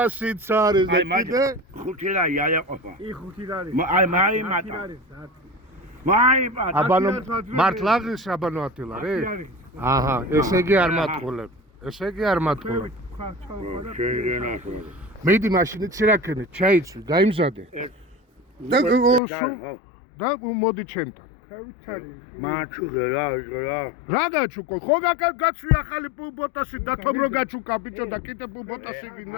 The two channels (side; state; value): right; drops out; at 19.2 s